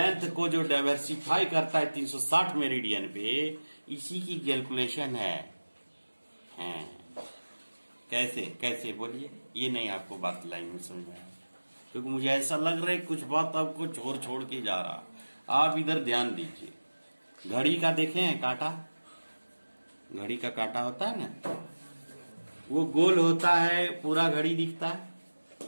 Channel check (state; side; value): inverted; both; correlation -1.00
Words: को जो डाइवर्सिफाई करता है 360 मेरिडियन पे, इसी की कैलकुलेशन है। कैसे बोलिए, ये नहीं आपको बात लाइन में समझ में आया, क्योंकि मुझे ऐसा लग रहा है कुछ बात आपको छोड़ के जा रहा। आप इधर ध्यान दीजिए, घड़ी का देखे हैं कांटा, घड़ी का कांटा होता है ना, वो गोल होता है, पूरा घड़ी दिखता है,